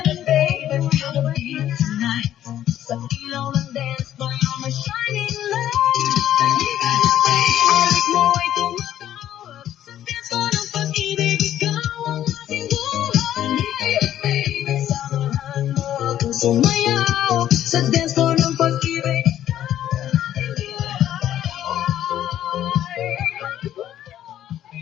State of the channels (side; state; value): right; quieter; 11.7 dB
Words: Sumayaw sa dance floor ng pag-ibig.